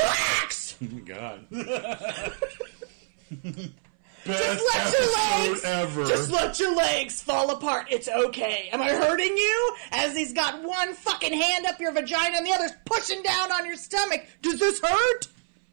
God. Best ever. Just let your legs fall apart. It's okay. Am I hurting you? As he's got one fucking hand up your vagina and the other's pushing down on your stomach. Does this hurt?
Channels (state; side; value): silent; left; 61 dB below the other